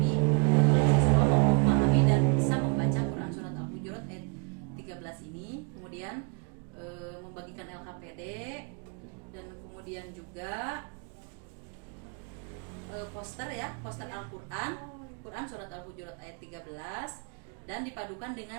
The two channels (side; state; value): left; quieter; 35.8 dB